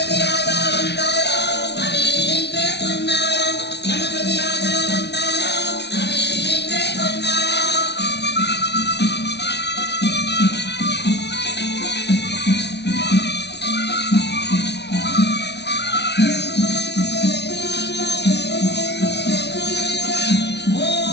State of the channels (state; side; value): late; right; 0.49 ms